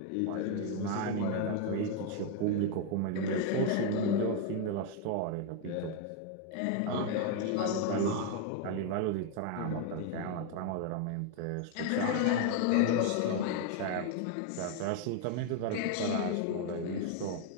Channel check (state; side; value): different; both; correlation 0.01